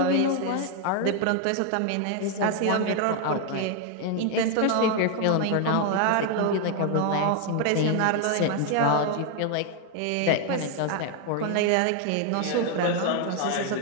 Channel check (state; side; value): different; both; correlation 0.01